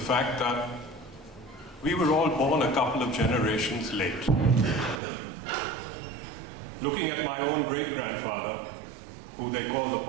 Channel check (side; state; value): left; drops out; at 5.0 s